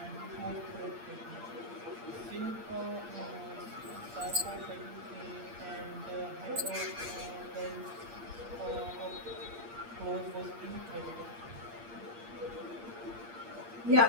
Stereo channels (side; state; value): left; late; 8.6 ms